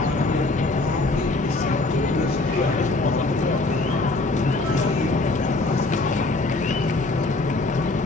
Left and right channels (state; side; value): quieter; right; 3.1 dB